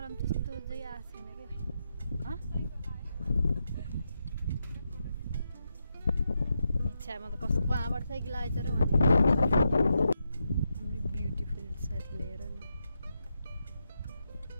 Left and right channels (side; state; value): both; inverted; correlation -0.85